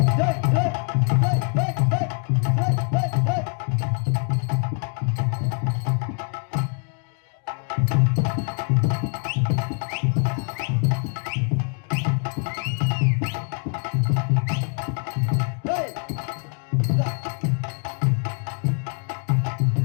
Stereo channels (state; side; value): quieter; right; 39.8 dB